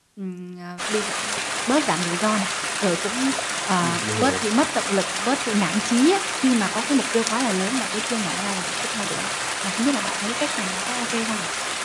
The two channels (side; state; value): both; identical; correlation 1.00